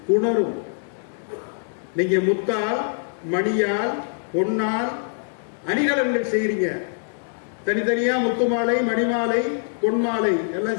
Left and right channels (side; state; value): right; silent; digital silence